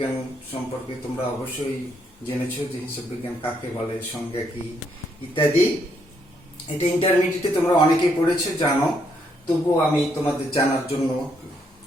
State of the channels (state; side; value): normal; both; correlation 0.74